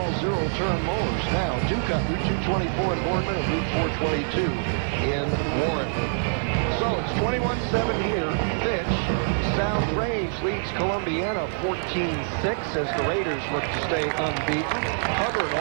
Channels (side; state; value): left; silent; 60 dB below the other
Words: zero-turn mowers. Now, Ducat, Route 224 in Boardman and Route 422 in Warren. So it's 21-7 here. Fitch. South Range leads Columbiana 14-6 as the Raiders look to stay unbeaten. Hubbard